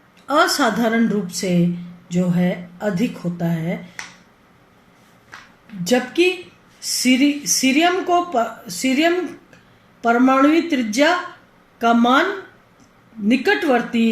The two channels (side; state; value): both; identical; correlation 1.00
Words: असाधारण रूप से जो है अधिक होता है, जबकि सीरियम परमाणुीय त्रिज्या का मान